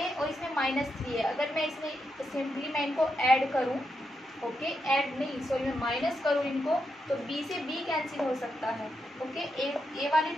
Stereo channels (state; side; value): normal; both; correlation 0.84